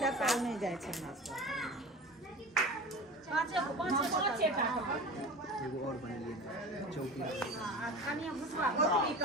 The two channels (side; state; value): both; normal; correlation 0.34